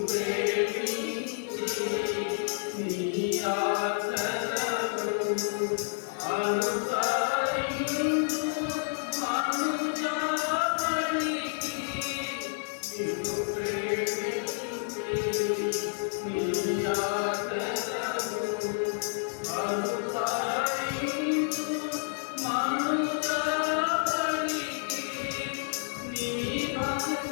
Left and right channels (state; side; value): silent; right; digital silence